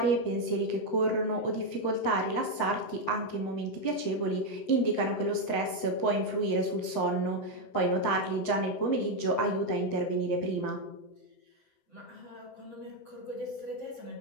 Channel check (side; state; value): right; late; 7.8 ms